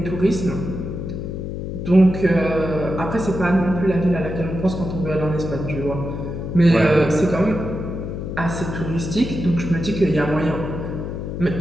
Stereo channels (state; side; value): noise; left; hum, 5 dB below the sound